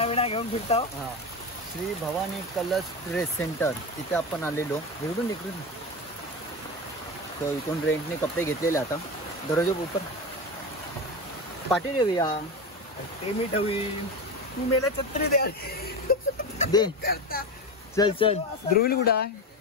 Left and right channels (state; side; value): normal; both; correlation 0.21